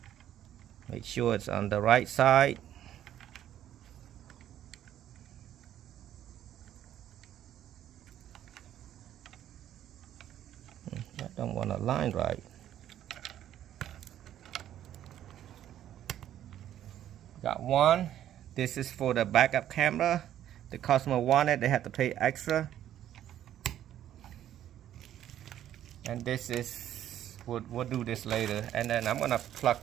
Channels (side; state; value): left; quieter; 11.4 dB